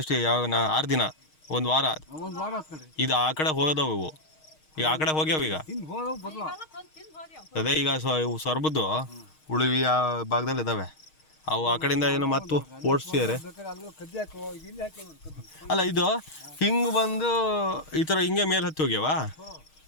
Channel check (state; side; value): late; right; 6.4 ms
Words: ಯಾವ 6 ದಿನ, 1 ವಾರ. ಇದು ಆ ಕಡೆ ಹೋದವು ಇವು. ಈಗ ಆ ಕಡೆ ಹೋಗ್ಯಾವ ಈಗ. ಅದೇ ಈಗ ಸೊರಬದ್ದು ಉಳಿವಿ ಆ ಭಾಗದಲ್ಲಿ ಇದ್ದಾವೆ ಅವು. ಆ ಕಡೆಯಿಂದ ಏನು ಮತ್ತು ಓಡಿಸ್ತಿದ್ದಾರೆ. ಅಲ್ಲ ಇದು ಹಿಂಗೆ ಬಂದು ಈ ಥರ ಹಿಂಗೆ ಮೇಲೆ ಹತ್ತಿ ಹೋಗ್ಯಾವ.